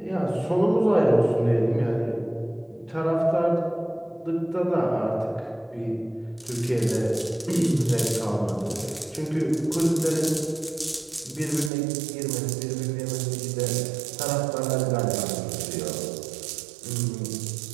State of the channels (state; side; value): drops out; left; at 11.7 s